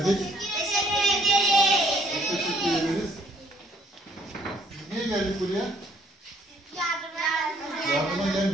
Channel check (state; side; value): normal; both; correlation 0.63